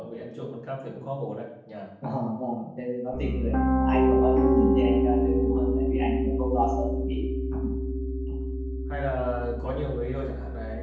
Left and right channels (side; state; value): both; identical; correlation 1.00